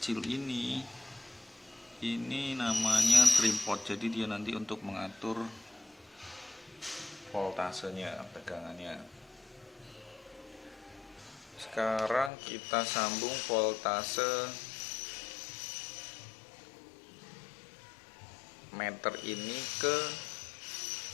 ini namanya trim pot, jadi dia nanti untuk mengatur voltasenya, tegangannya. Sekarang kita sambung voltase meter ini ke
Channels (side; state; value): right; drops out; at 12.3 s